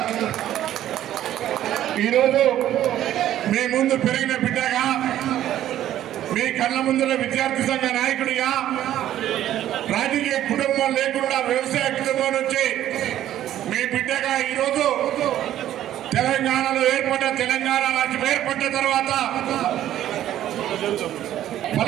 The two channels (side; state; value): left; quieter; 12.3 dB